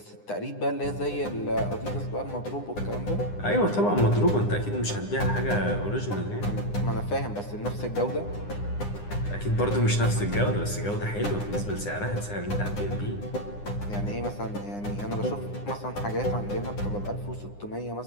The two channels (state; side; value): late; right; 9.8 ms